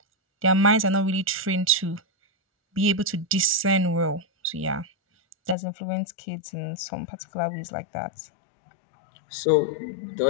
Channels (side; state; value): right; drops out; at 5.6 s